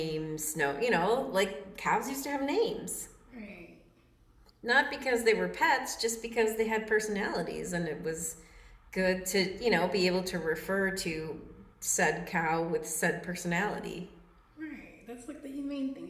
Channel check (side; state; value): both; identical; correlation 1.00